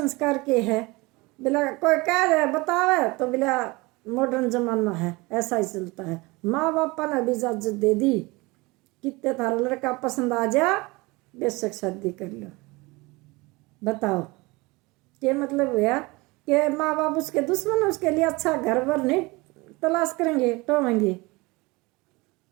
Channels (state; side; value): quieter; left; 23.9 dB